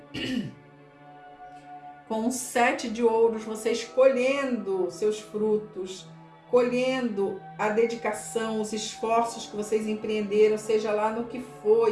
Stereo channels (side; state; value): both; identical; correlation 1.00